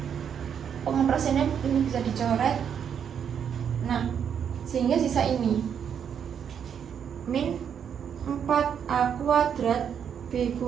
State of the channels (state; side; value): quieter; left; 8.0 dB